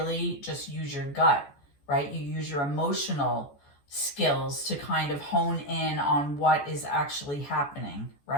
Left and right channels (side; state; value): right; late; 14 ms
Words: just use your gut, right? You use your emotional skills to kind of hone in on what is actually happening,